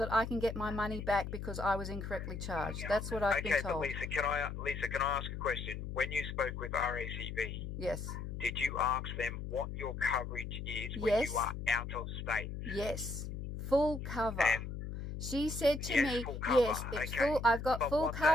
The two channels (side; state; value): left; noise; hum, 6 dB below the sound